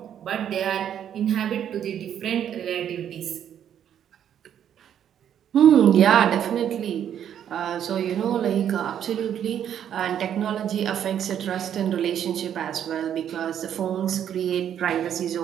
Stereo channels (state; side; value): quieter; left; 9.6 dB